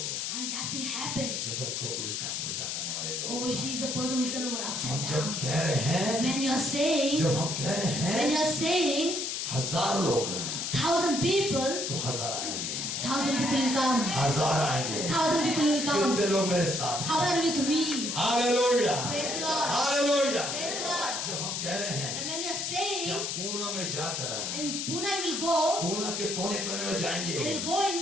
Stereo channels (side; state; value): left; noise; hiss, 2 dB below the sound